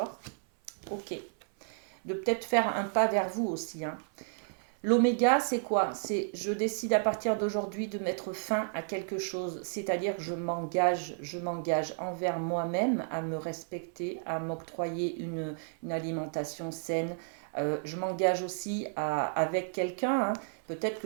Ok. De peut-être faire un pas vers vous aussi. Hein. L'oméga, c'est quoi? C'est je décide à partir d'aujourd'hui de mettre fin à quelque chose, c'est-à-dire je m'engage envers moi-même à me respecter, à m'octroyer une alimentation saine. Je m'engage aussi avec quelqu'un. Hein. Peut-être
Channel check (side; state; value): left; silent; 56 dB below the other